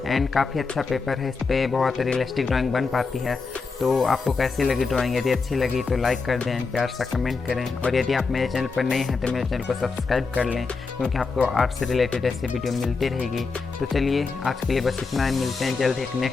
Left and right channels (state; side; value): quieter; right; 4.5 dB